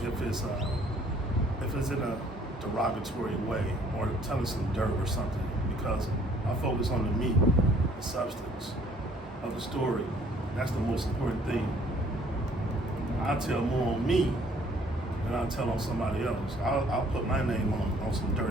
if it's in a derogatory way or telling some dirt or something, because I focus on the meat, the substance of the story. That's the most important thing. I tell more on me than I tell on somebody else. I'll put my name on some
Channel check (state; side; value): normal; both; correlation 0.60